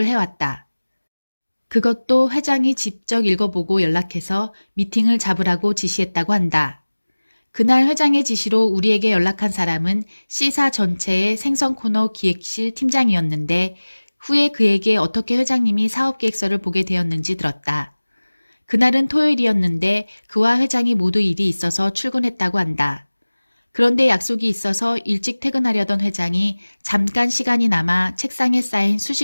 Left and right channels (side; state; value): both; inverted; correlation -1.00